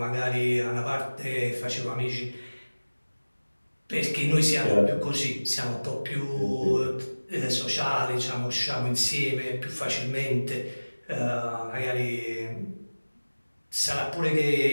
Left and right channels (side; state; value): both; inverted; correlation -1.00